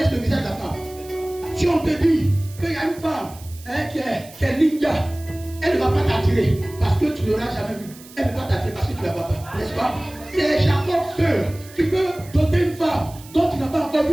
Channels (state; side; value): noise; right; hiss, 20 dB below the sound